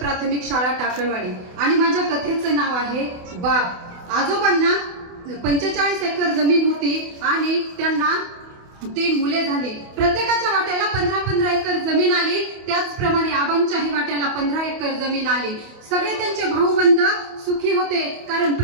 शाळा टाकळवाडी. आणि माझ्या कथेचं नाव आहे बाप. आजोबांना 45 एकर जमीन होती आणि त्यांना 3 मुले झाली. प्रत्येकाच्या वाट्याला 15-15 एकर जमीन आली. त्याचप्रमाणे आबांच्याही वाट्याला 15 एकर जमीन आली. सगळे त्यांचे भाऊबंद सुखी होते, कारण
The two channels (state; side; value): late; left; 28 ms